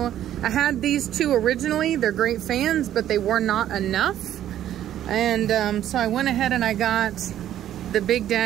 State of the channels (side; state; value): left; quieter; 11.6 dB